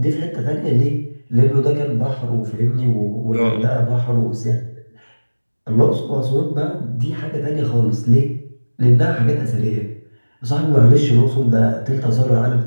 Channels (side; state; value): both; inverted; correlation -1.00